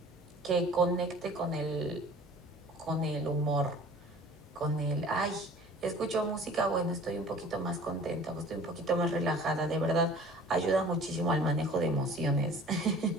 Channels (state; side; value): normal; both; correlation 0.47